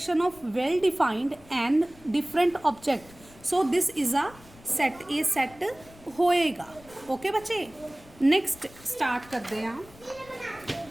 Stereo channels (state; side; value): noise; left; rumble, 23 dB below the sound